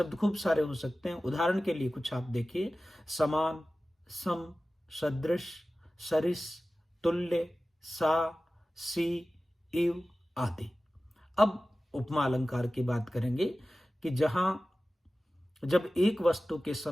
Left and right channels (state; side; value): normal; both; correlation 0.96